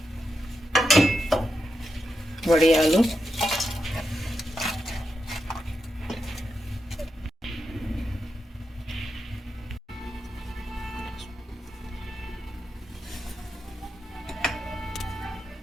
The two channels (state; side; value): normal; both; correlation 0.86